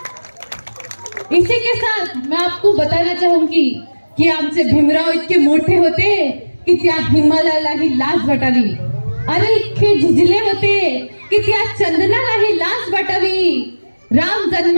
इसी के साथ मैं आपको बताना चाहूंगी की आमचे भीमराव इतके मोठे होते की त्या हिमालयालाही लाज वाटावी, अरे इतके झिजले होते की त्या चंदनालाही लाज वाटावी। राम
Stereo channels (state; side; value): inverted; both; correlation -1.00